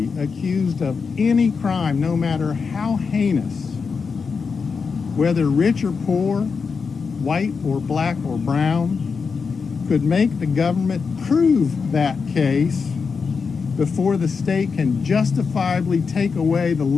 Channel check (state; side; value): quieter; right; 5.3 dB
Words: accused of any crime, no matter how heinous, whether rich or poor, white or black or brown, could make the government prove that case before the state can justifiably take away the